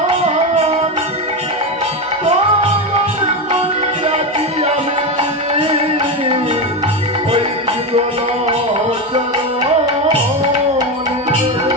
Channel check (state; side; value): normal; both; correlation 0.15